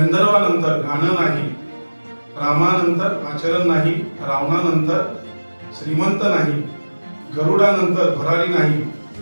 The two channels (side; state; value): both; inverted; correlation -1.00